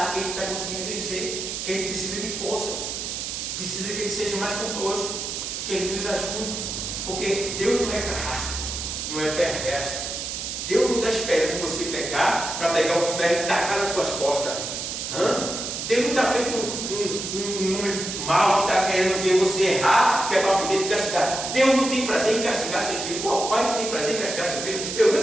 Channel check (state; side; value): noise; right; hiss, 5 dB below the sound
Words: que a gente está conseguindo vencer, que a gente precisa de força, precisa que Ele seja mais conosco, que Ele nos ajude, porque Deus não é carrasco, não é perverso. Deus não está esperando você pegar para pegar um ferro e tacar nas suas costas. Deus não está feito um mal que está querendo ver você errar, que é para poder te castigar. Deus não tem prazer em castigar seu filho. Qual pai não tem prazer em castigar seu filho? Eu